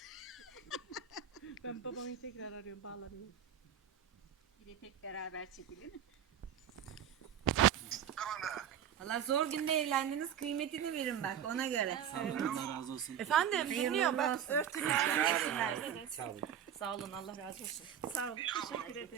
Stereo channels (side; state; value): left; quieter; 9.1 dB